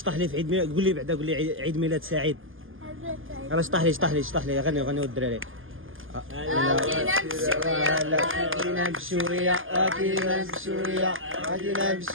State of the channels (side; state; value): left; late; 0.59 ms